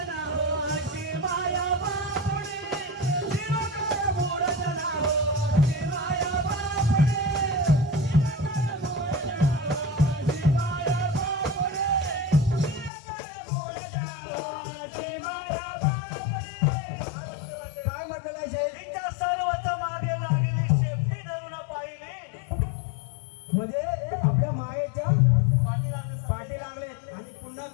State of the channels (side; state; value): right; drops out; at 12.9 s